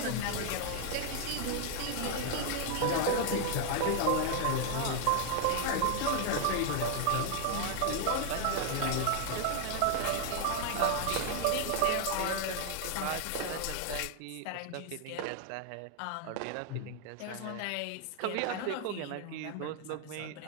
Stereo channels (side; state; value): both; different; correlation 0.00